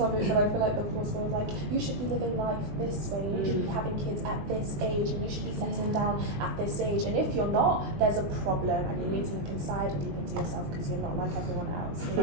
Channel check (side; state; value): left; late; 20 ms